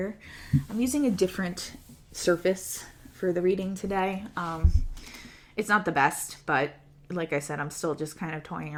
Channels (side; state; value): both; identical; correlation 1.00